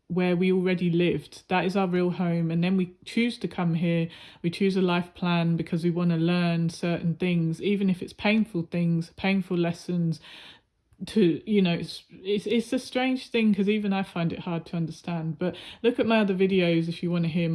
where we already lived. That is our real home. And then we choose to come here. We choose a life plan because we want to learn certain things, even if it's painful things, painful lessons. It's a strange thing because even I find it hard to understand. But look at my other videos if you want to hear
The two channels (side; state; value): both; identical; correlation 1.00